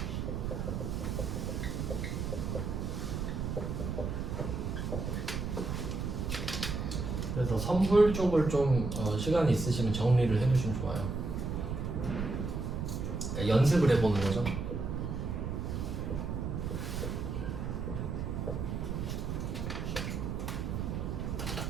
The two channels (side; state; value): right; noise; rumble, 2 dB below the sound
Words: 그래서 선불 쪽을 좀 시간이 있으시면 정리를 해두시면 좋아요. 그러니까 연습을 해보는 거죠.